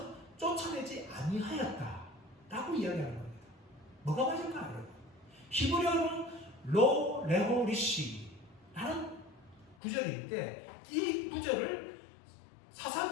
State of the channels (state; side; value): drops out; right; at 9.8 s